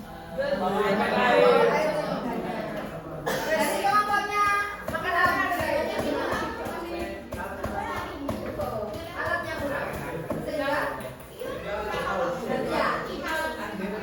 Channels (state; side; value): identical; both; correlation 1.00